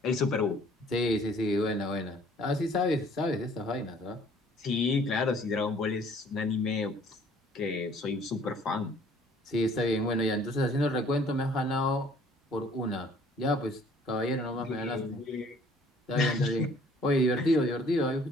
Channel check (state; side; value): normal; both; correlation 0.56